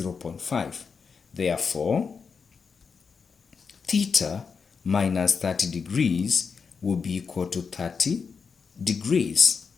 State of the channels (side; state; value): right; quieter; 5.6 dB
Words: Therefore, theta minus 30 degrees will be equal to 30 degrees.